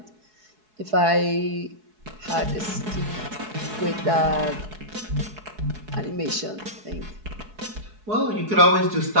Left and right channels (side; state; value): left; late; 4.7 ms